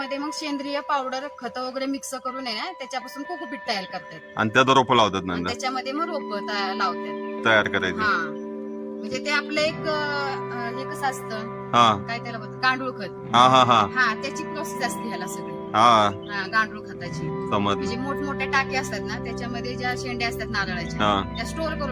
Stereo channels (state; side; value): identical; both; correlation 1.00